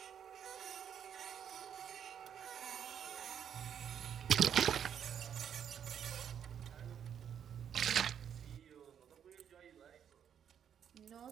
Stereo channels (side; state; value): left; quieter; 8.6 dB